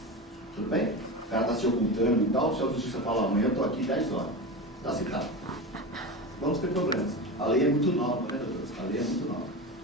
Tudo bem? O cara está se ocultando e tal, se a justiça falar amanhã eu estou aqui 10 horas. Está citado. Vamos ter problemas. A lei é muito nova, né, doutores? A lei é muito nova.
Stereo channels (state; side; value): normal; both; correlation 0.24